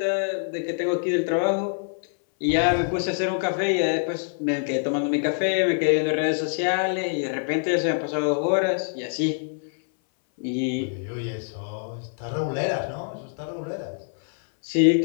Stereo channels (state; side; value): silent; right; 59 dB below the other